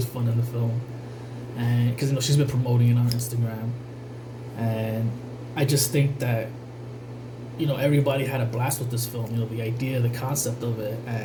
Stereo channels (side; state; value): both; identical; correlation 1.00